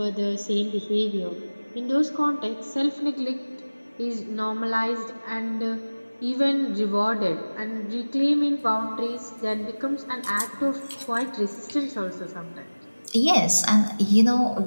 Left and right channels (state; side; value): inverted; both; correlation -1.00